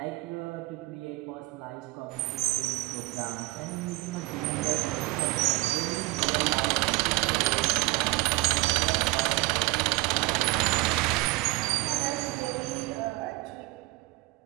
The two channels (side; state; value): left; quieter; 21.1 dB